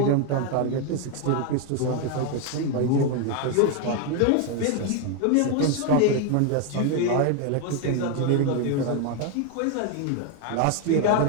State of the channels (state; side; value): different; both; correlation 0.01